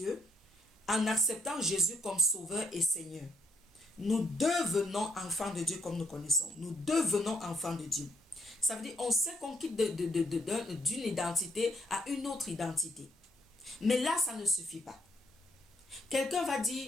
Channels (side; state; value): both; normal; correlation 0.73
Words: en acceptant Jésus comme Sauveur et Seigneur. Nous devenons enfants de Dieu comme nous connaissons. Nous devenons enfants de Dieu. Ça veut dire on sait qu'on quitte d'une identité à une autre identité. Mais là, ça ne suffit pas. Quelqu'un va